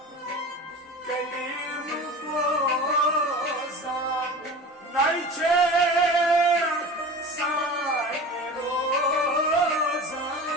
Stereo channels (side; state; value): both; normal; correlation 0.34